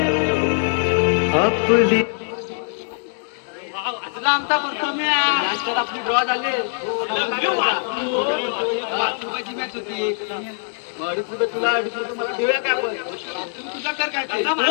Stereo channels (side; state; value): right; silent; digital silence